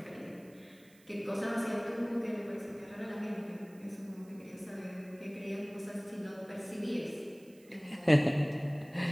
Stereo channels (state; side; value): noise; right; hiss, 27 dB below the sound